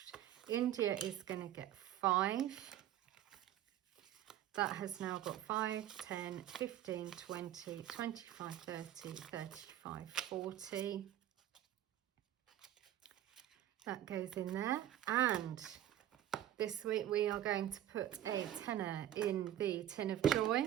India is going to get 5. That has now got 5, 10, 15, 20, 25, 30, 35, 40. That goes in there. And this week we are going to put a tenner in the tin of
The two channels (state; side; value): quieter; left; 12.1 dB